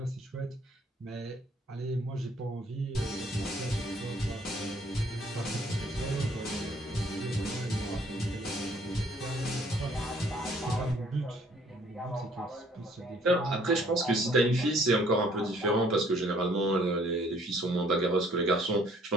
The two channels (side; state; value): both; normal; correlation 0.61